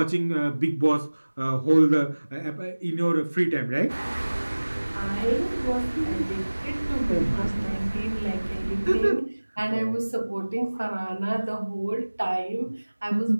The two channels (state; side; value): inverted; both; correlation -1.00